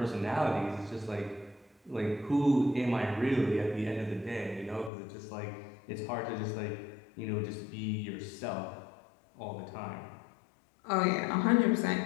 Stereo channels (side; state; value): right; drops out; at 4.9 s